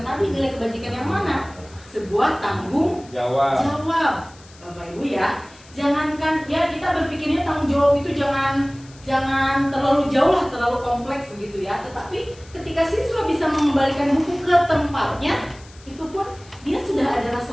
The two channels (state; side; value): noise; left; hiss, 24 dB below the sound